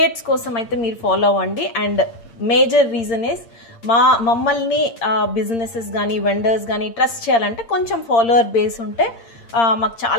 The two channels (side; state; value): right; late; 8.7 ms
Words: kosam aithe meer follow avandi. And major reason is మమ్మల్ని బిజినెసెస్ కానీ వెండర్స్ కానీ ట్రస్ట్ చేయాలంటే కొంచెం ఫాలోవర్ బేస్ ఉంటే మాకు